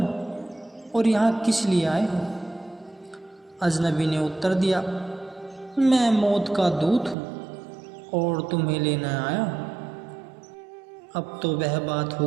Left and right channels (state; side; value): drops out; left; at 7.2 s